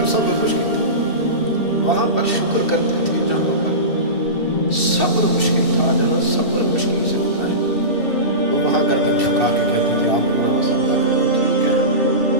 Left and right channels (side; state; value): right; late; 2.7 ms